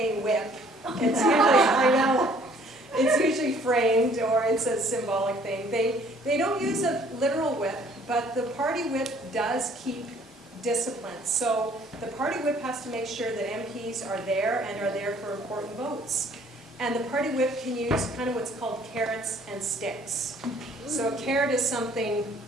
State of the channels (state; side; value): normal; both; correlation 0.59